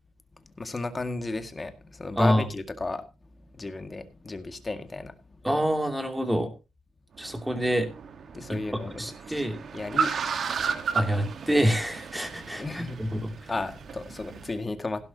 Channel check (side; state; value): both; normal; correlation 0.91